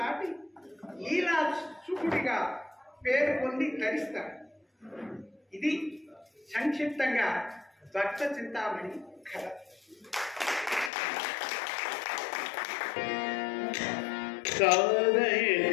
లీలా చూపుడిగా పేరు పొంది తరిస్తాడు. ఇది సంక్షిప్తంగా భక్త చింతామణి కథ.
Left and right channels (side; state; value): right; drops out; at 10.9 s